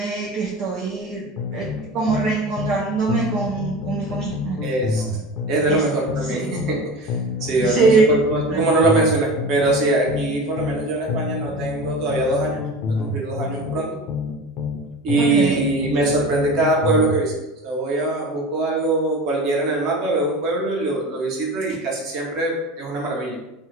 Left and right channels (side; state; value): both; normal; correlation 0.33